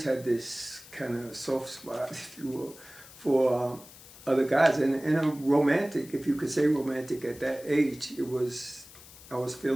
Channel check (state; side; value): noise; left; hiss, 19 dB below the sound